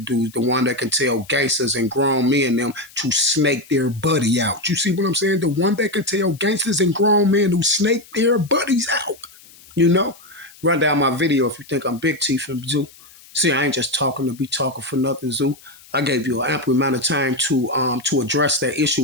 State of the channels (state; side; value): noise; left; hiss, 23 dB below the sound